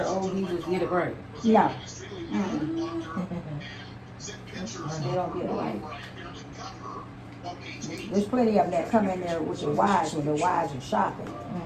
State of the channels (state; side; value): identical; both; correlation 1.00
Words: old geezers get it right. No. They don't get it right. There's plenty of them that come in there with their wives when their wives are shopping.